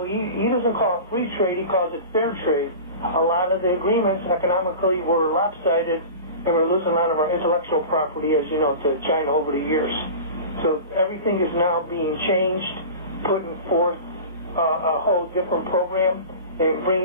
he doesn't call it free trade, he calls it fair trade. A lot of the agreements economically were lopsided, and we're losing a lot of our intellectual property, as you know, to China over the years. So everything is now being changed, putting forth a whole different program and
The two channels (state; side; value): inverted; both; correlation -0.34